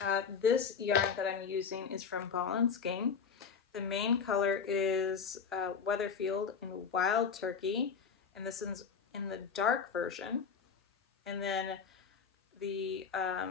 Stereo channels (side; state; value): right; quieter; 6.2 dB